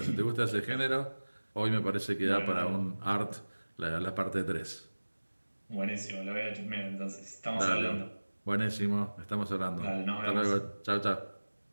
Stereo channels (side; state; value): both; inverted; correlation -1.00